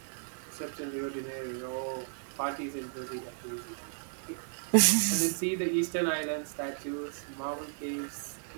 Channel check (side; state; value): left; silent; 55 dB below the other